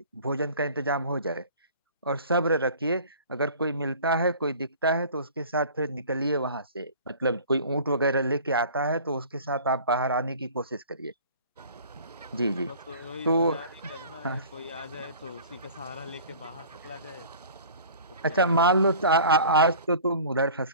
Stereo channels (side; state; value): both; inverted; correlation -0.44